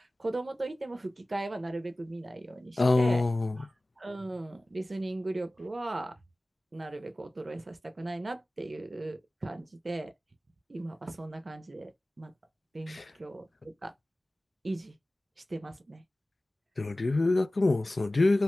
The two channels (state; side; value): normal; both; correlation 0.97